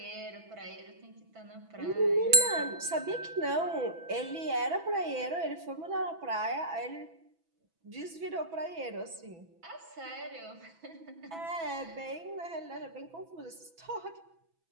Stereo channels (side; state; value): left; late; 6.0 ms